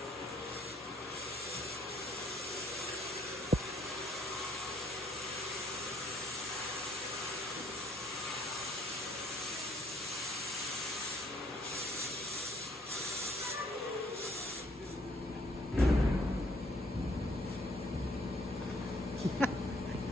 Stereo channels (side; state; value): both; normal; correlation 0.65